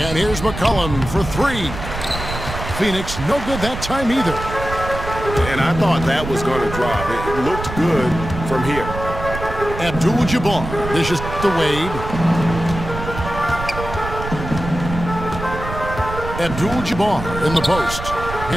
here's McCollum for 3. Phoenix no good that time either. And I thought that was going to drop. It looked good from here. Abdul-Jabbar dishes to Wade. Abdul-Jabbar in the post.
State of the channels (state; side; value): noise; right; rumble, 8 dB below the sound